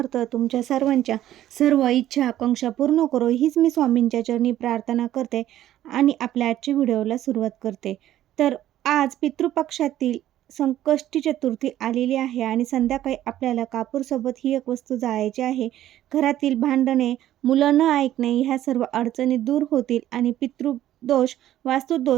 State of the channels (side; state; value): left; quieter; 12.9 dB